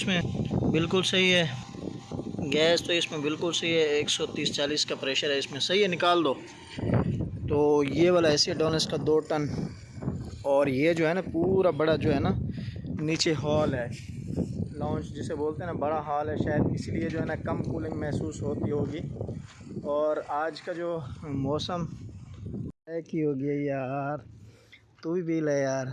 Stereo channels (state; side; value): identical; both; correlation 1.00